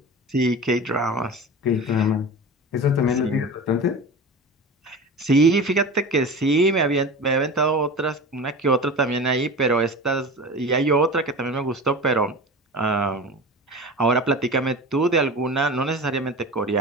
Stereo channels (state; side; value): normal; both; correlation 0.32